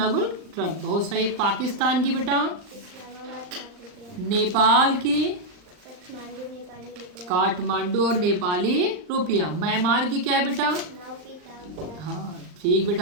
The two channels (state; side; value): late; left; 39 ms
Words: ट्रम्प। बहुत सही। पाकिस्तान की बेटा। इस्लामाबाद लाख रुपया। नेपाल की। काठमांडू नेपाली रुपया। काठमांडू और नेपाली रुपया। म्यांमार की क्या है बेटा। नाउपी ताप। हाँ ठीक